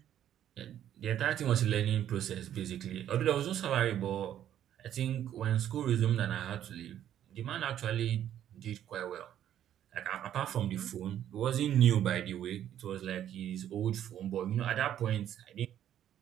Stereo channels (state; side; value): quieter; left; 10.8 dB